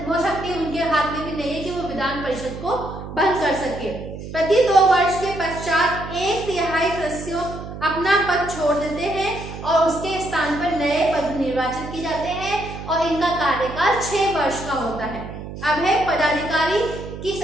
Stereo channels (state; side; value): noise; right; hum, 10 dB below the sound